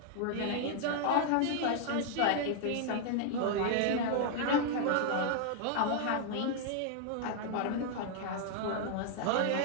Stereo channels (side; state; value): both; different; correlation 0.00